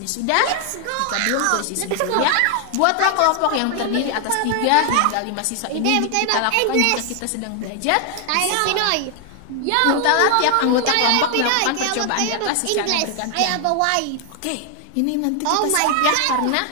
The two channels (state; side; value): different; both; correlation 0.00